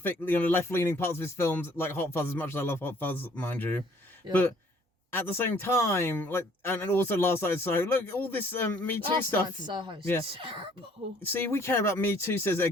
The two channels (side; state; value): both; normal; correlation 0.59